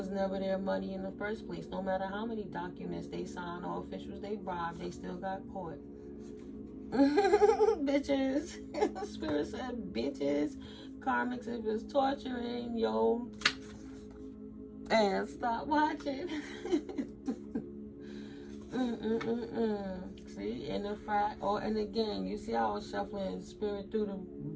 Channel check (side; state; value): both; identical; correlation 1.00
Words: never their money in the first place. No matter how many documents they signed or officials they bribed, they still got caught. Bitches. Spirit said bitches. Karmics, if it's torturing, yo, and stop watching. See, and the fact, and again, you see how I was shuffling Spirit through the